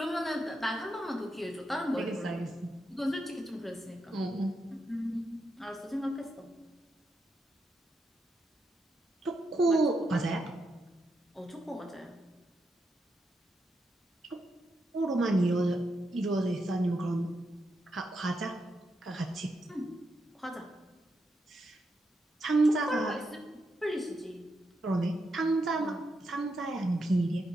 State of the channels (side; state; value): both; normal; correlation 0.83